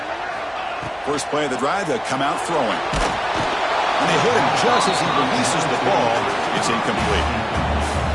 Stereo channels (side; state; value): both; identical; correlation 1.00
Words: First play of the drive, they'll come out throwing. And they hit him just as he releases the ball. It's incomplete.